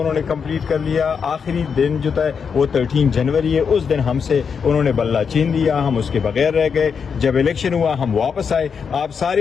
कंप्लीट कर लिया। आखिरी दिन जो था वो 13 जनवरी है, उस दिन हमसे उन्होंने बल्ला छीन लिया, हम उसके बगैर रह गए। जब इलेक्शन हुआ हम वापस आए। आप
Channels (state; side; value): quieter; right; 6.3 dB